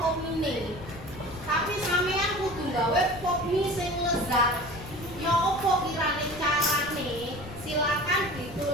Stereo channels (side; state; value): left; noise; rumble, 14 dB below the sound